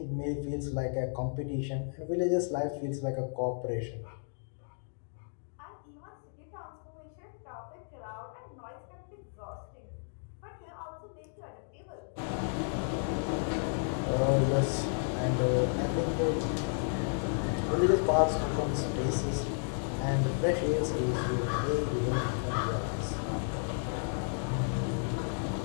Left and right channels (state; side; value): silent; right; digital silence